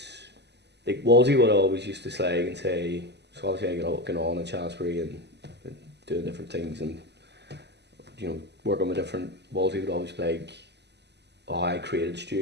like Wolsey would always used to slag and say, so obviously I got on in Shaftesbury and doing different things and working with different. Wolsey would always be like, oh, I created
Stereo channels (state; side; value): late; left; 0.50 ms